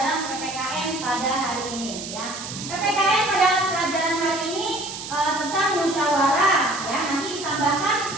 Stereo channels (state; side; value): noise; right; hiss, 9 dB below the sound